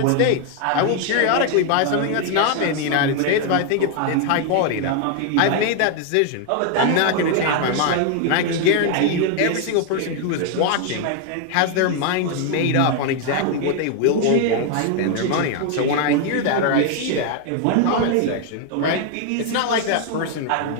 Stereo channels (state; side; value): different; both; correlation 0.00